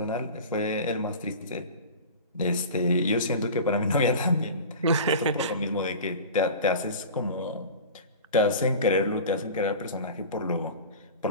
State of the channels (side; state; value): both; inverted; correlation -0.34